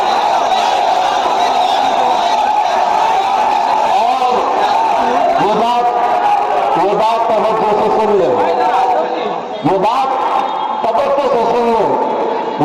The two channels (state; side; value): identical; both; correlation 1.00